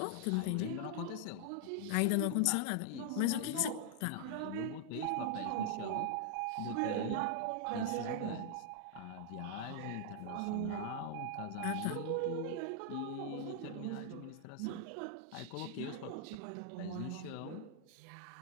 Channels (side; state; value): both; different; correlation -0.01